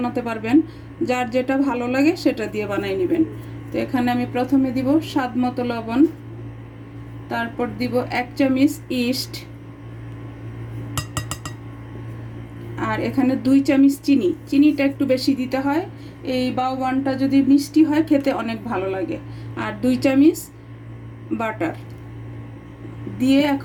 পারবেন, যার যেটা ভালো লাগে সেটা দিয়ে বানাই নেবেন। তো এখানে আমি প্রথমে দিব স্বাদ মতো লবণ, তারপর দিব 1 চামচ ইস্ট, আর এখানে 2 চামচ চিনি। চিনিটা একটু বেশি দিতে হয়, এই বাওবানটা যদি মিষ্টি হয় খেতে অনেক ভালো লাগে। আর 2 চামচ বাটার দিয়ে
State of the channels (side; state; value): both; identical; correlation 1.00